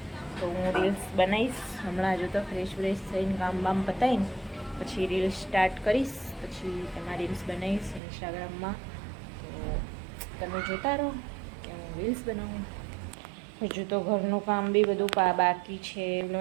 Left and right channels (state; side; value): drops out; left; at 8.0 s